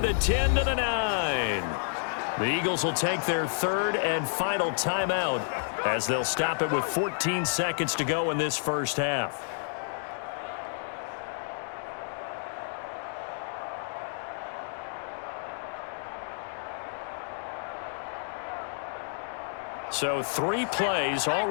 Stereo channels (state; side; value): silent; right; digital silence